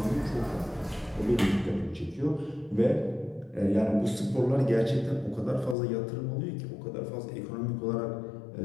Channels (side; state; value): right; drops out; at 5.8 s